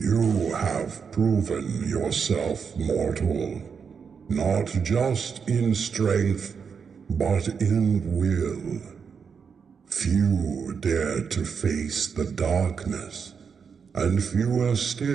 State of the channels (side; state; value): left; quieter; 6.2 dB